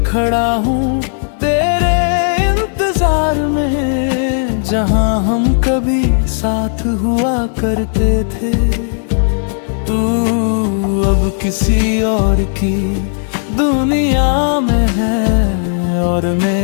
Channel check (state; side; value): silent; right; digital silence